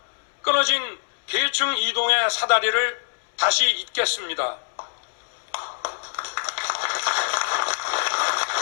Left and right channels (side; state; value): right; silent; digital silence